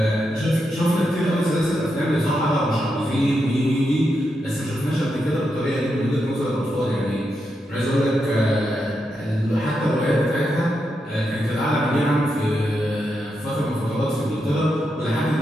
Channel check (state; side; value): normal; both; correlation 0.84